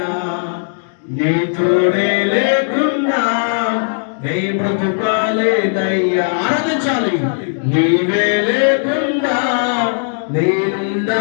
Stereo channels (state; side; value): silent; right; digital silence